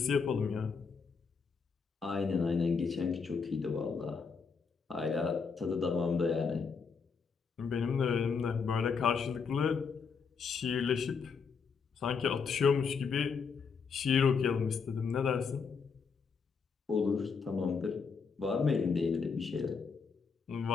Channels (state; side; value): quieter; right; 5.5 dB